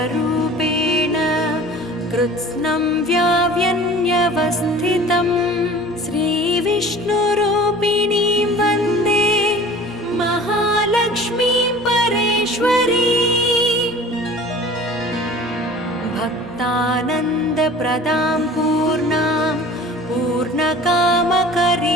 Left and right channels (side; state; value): both; normal; correlation 0.43